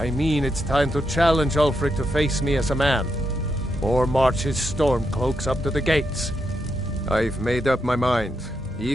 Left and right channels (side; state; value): both; normal; correlation 0.83